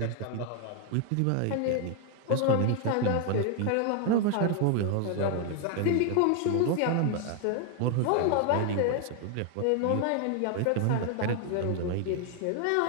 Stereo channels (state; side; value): different; both; correlation 0.00